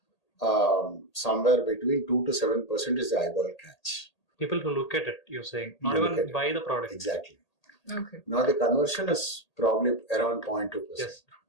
somewhere between 2 to 7% is the eyeball catch. People who look at it, you're saying, not even buy the product. Exactly. Okay. Now the conversion is probably around 0.2%. Yes.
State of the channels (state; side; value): late; right; 1.8 ms